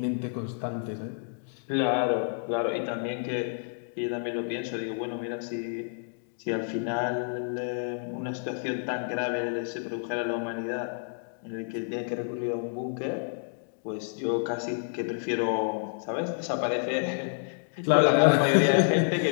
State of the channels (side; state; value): right; silent; digital silence